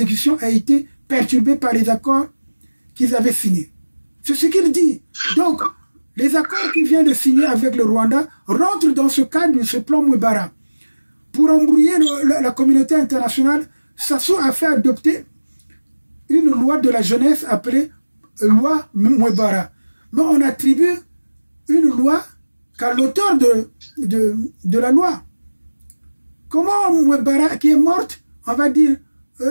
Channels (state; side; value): inverted; both; correlation -1.00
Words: a été perturbée par les accords qu'ils avaient signés. C'est ce qu'il dit. Donc, les accords qu'il vient de signer avec le Rwanda rentrent dans ce cadre de ce plan Mwebara. Pour embrouiller la communauté internationale, Sassou a fait adopter une loi de la jeunesse appelée loi Mwebara. Mais on attribue une loi qu'à l'auteur de la loi. Comment Mwebara, qui est morte, on va dire